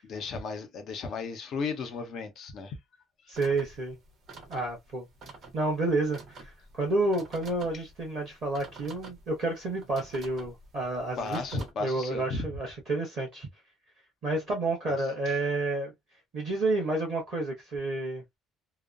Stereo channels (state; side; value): normal; both; correlation 0.62